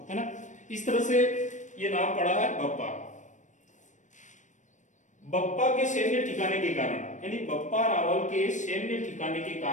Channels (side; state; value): right; late; 0.36 ms